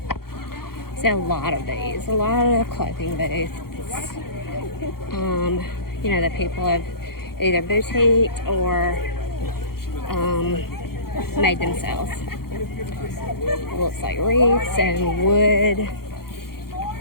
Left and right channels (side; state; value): right; late; 0.94 ms